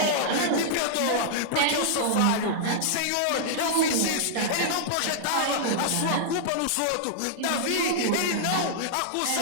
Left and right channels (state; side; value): different; both; correlation -0.01